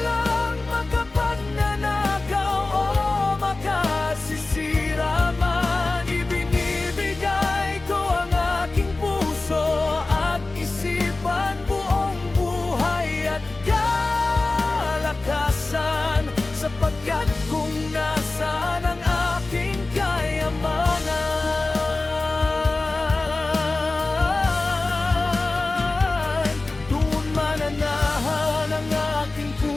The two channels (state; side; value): quieter; right; 3.3 dB